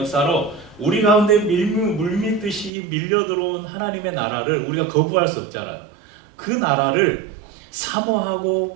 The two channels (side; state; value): left; drops out; at 2.7 s